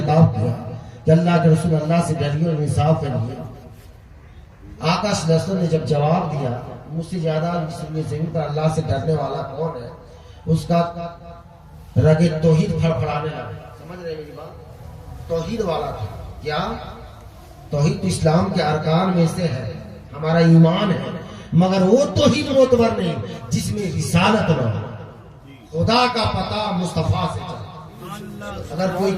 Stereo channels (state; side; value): identical; both; correlation 1.00